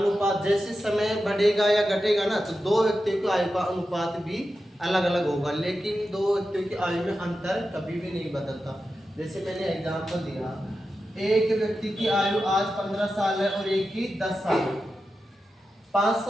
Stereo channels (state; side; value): normal; both; correlation 0.91